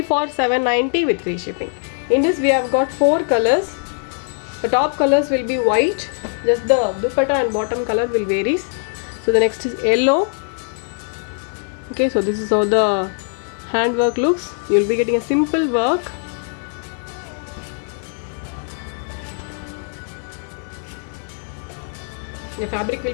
for $790 with free shipping. In this we have got 4 colors. The top colors will be white, just the dupatta and bottom color will varies. So the next is yellow. Okay, so this is how the hand work looks. You will be getting a simple work. The fabric will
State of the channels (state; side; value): silent; right; 56 dB below the other